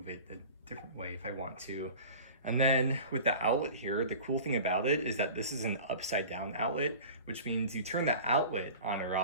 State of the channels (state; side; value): inverted; both; correlation -0.39